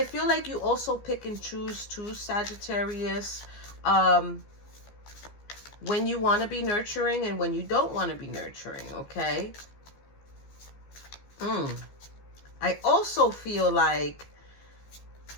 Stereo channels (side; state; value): right; late; 15 ms